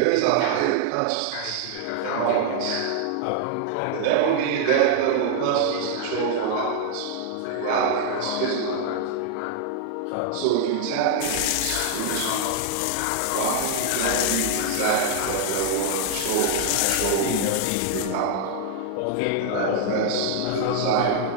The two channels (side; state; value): both; different; correlation 0.00